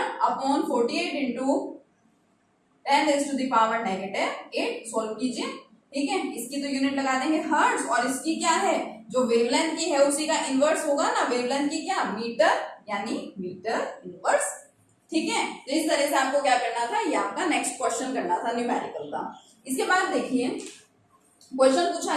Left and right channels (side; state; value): both; identical; correlation 1.00